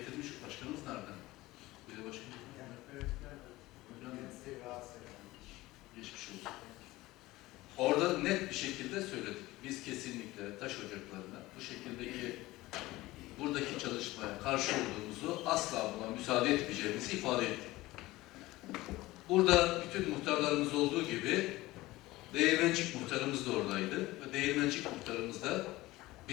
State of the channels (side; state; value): right; quieter; 18.7 dB